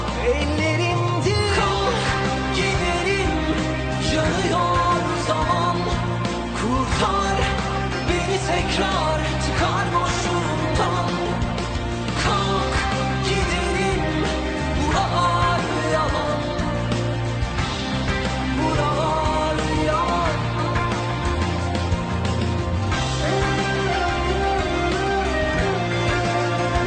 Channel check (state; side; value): identical; both; correlation 1.00